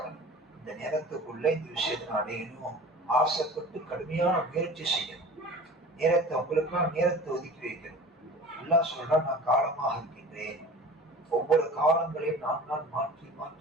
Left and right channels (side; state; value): both; normal; correlation 0.40